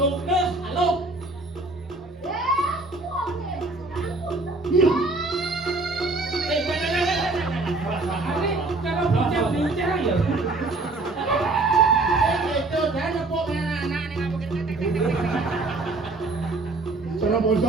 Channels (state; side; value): quieter; left; 3.2 dB